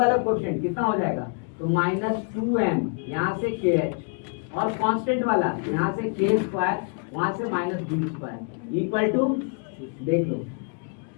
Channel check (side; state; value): right; quieter; 38.7 dB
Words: कोएफिशिएंट कितना हो जाएगा, तो माइनस 2m यहाँ से kh और कांस्टेंट वाला यहाँ से k स्क्वायर वहां से minus b square equal to, देख लो